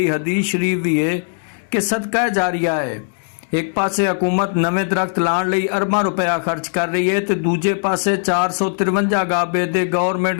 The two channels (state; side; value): silent; right; digital silence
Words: ਹਦੀਸ ਸ਼ਰੀਫ ਵੀ ਹੈ ਕਿ ਸਦਕਾ ਜਾਰੀਆ ਹੈ। ਇੱਕ ਪਾਸੇ ਹਕੂਮਤ ਨਵੇਂ ਦਰਖਤ ਲਾਉਣ ਲਈ ਅਰਬਾਂ ਰੁਪਇਆ ਖਰਚ ਕਰ ਰਹੀ ਹੈ ਤੇ ਦੂਜੇ ਪਾਸੇ 453 ਗਾਬੇ ਦੇ